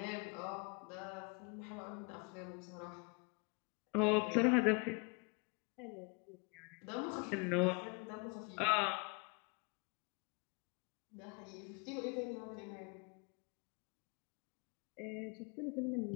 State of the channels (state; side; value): quieter; right; 33.1 dB